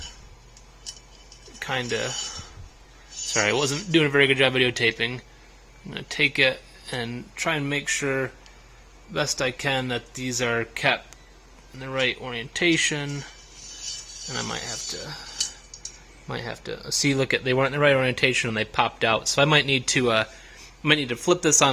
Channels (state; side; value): identical; both; correlation 1.00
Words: kind of, sorry, I wasn't doing a very good job videotaping. I'm going to take it and try and make sure best I can that these are kept in the right orientation, and I might have to see, look at, they weren't in the right orientation and they popped out, so I might need to flip this